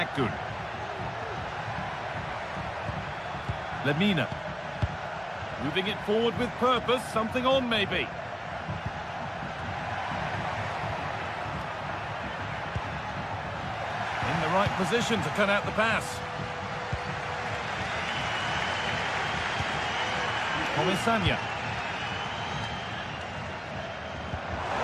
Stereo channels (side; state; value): both; identical; correlation 1.00